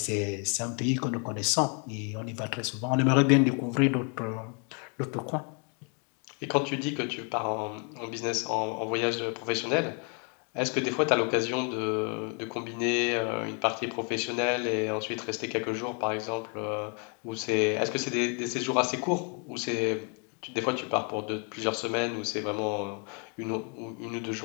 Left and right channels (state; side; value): quieter; right; 37.8 dB